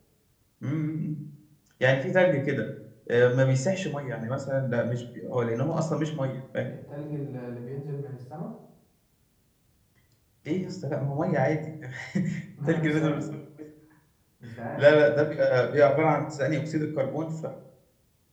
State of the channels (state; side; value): identical; both; correlation 1.00